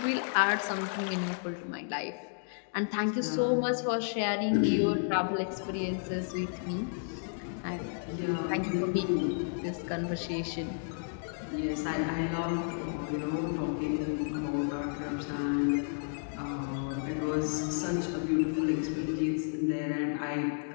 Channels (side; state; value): right; silent; digital silence